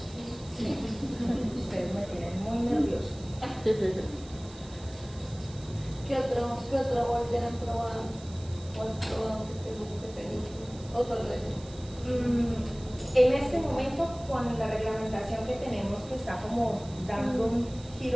Ustedes me tienen muy nervioso. ¿Qué otro molde han probado? ¿O has probado que te guste? ¿O solo ese? En este momento, con la reglamentación que tenemos, que está como dando un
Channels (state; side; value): noise; right; hiss, 20 dB below the sound